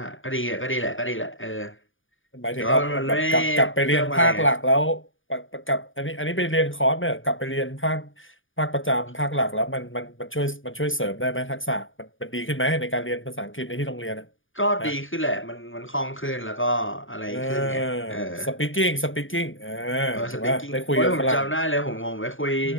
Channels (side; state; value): right; late; 0.57 ms